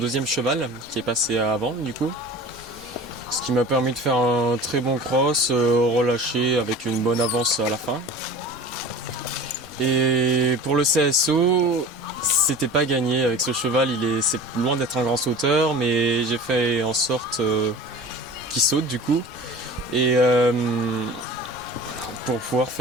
cheval qui est passé avant du coup. Ce qui m'a permis de faire un très bon cross, relâché avec une bonne avance à la fin. Et pour le CSO, c'était pas gagné avec ce cheval, c'est loin d'être un grand sauteur, mais j'ai fait en sorte qu'il saute du coup. Et pour pouvoir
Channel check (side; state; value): both; normal; correlation 0.38